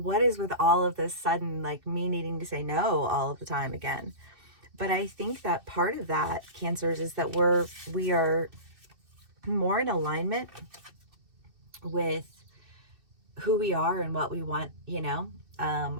is with all of this sudden, like me needing to say no all of the time again? But I think that part of that, Cancers, is that we are more in alignment with who we are and what we want,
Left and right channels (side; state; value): left; late; 2.6 ms